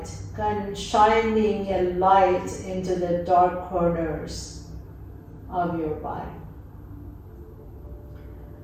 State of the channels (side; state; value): both; identical; correlation 1.00